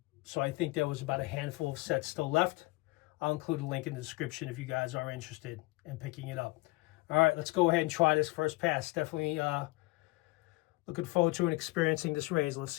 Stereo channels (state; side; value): quieter; right; 22.4 dB